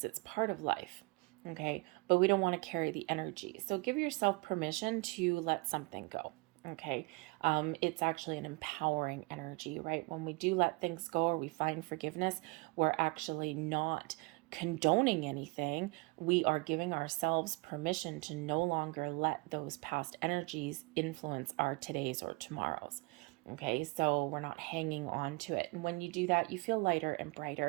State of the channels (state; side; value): quieter; left; 27.5 dB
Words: It's part of life, okay? But we don't want to carry the energy. So give yourself permission to let something go. Okay. It's actually an empowering energy, right? When we do let things go or we find forgiveness, we're actually not condoning anything. We are giving ourselves permission to no longer let those past energies influence our today's or tomorrow's. Okay, so we're not hanging on to it. And when you do that, you feel lighter and